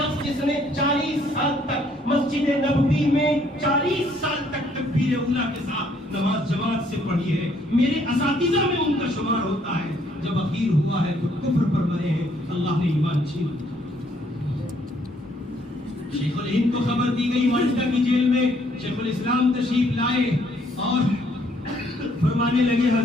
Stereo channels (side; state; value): both; normal; correlation 0.66